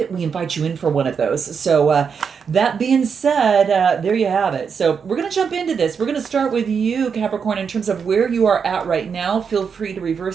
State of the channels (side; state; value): left; quieter; 6.4 dB